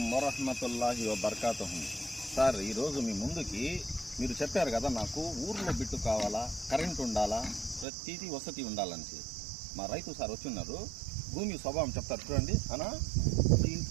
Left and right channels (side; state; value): left; drops out; at 7.9 s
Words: వరహ్మతుల్లాహి వబర్కాతుహు. సార్, ఈరోజు మీ ముందుకి మీరు చెప్పారు కదా, నాకు ఊర్లో బిట్టు కావాలా, కరెంట్ ఉండాలా, ప్రతిదీ వసతి ఉండాలని. మా రైతు సార్ వచ్చిన్నారు. భూమి స్వభావం చెప్తారు చూడండి అనా.